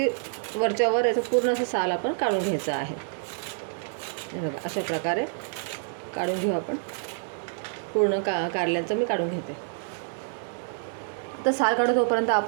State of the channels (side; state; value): left; silent; digital silence